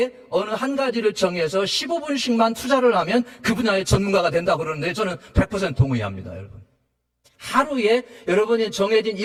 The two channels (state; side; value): identical; both; correlation 1.00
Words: 어느 한 가지를 정해서 15분씩만 투자를 하면 그 분야의 전문가가 된다고 그러는데 저는 100% 동의합니다, 여러분. 하루에 여러분이 정해진